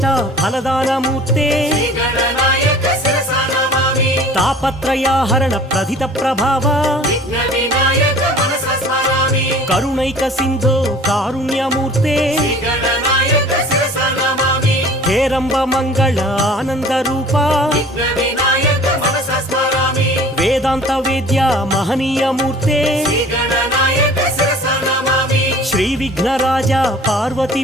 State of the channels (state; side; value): normal; both; correlation 0.47